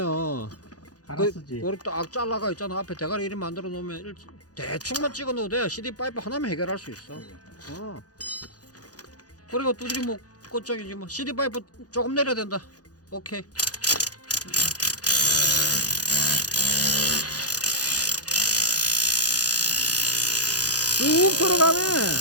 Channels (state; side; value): late; right; 0.68 ms